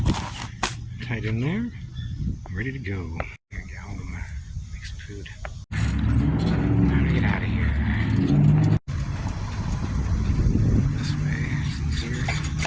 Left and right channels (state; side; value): identical; both; correlation 1.00